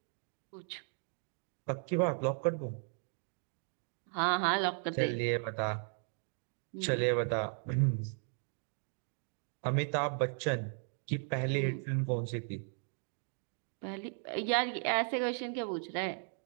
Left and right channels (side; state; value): left; silent; 54 dB below the other